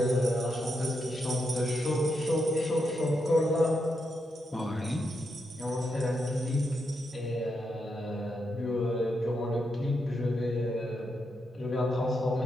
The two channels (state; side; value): normal; both; correlation 0.83